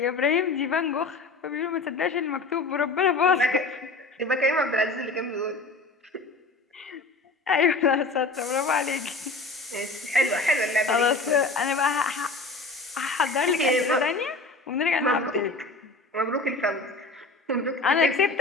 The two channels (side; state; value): right; quieter; 3.4 dB